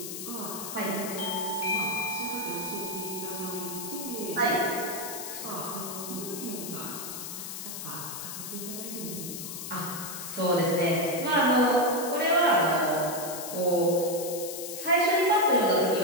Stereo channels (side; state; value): left; noise; hiss, 8 dB below the sound